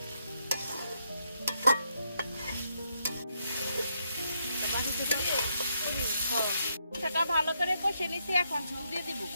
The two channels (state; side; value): inverted; both; correlation -0.77